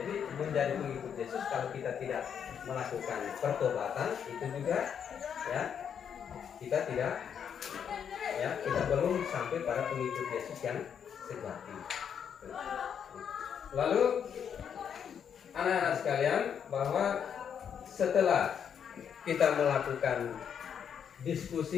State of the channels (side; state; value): right; quieter; 7.9 dB